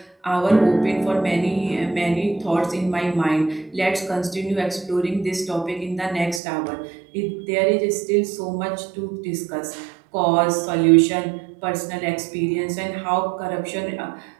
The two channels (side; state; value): left; drops out; at 6.4 s